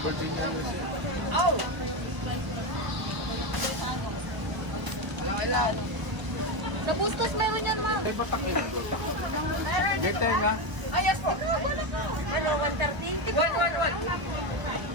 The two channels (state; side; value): late; left; 1.0 ms